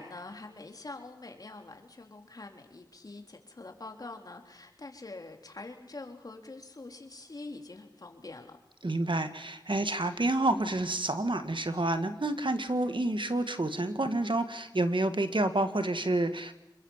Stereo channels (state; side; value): normal; both; correlation 0.67